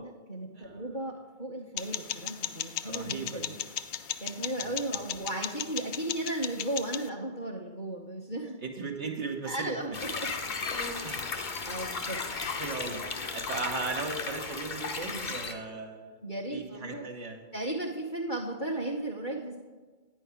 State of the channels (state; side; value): late; right; 2.3 ms